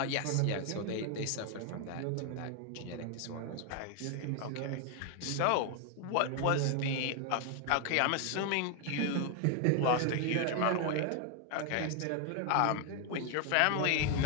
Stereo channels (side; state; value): both; different; correlation 0.01